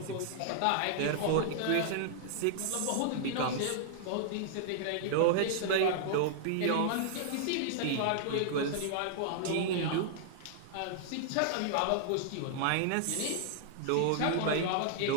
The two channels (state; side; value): different; both; correlation -0.01